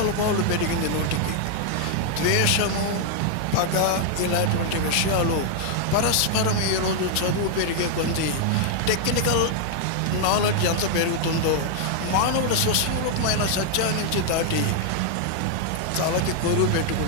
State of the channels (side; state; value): both; different; correlation 0.00